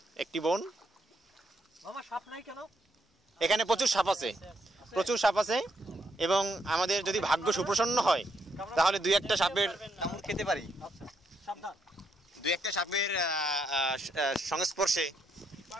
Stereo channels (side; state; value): both; normal; correlation 0.76